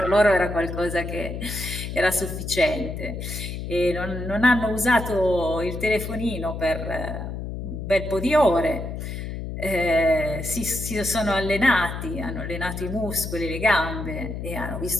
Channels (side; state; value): left; noise; hum, 6 dB below the sound